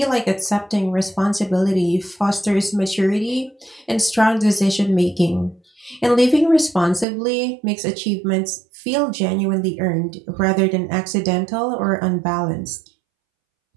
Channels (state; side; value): drops out; left; at 7.1 s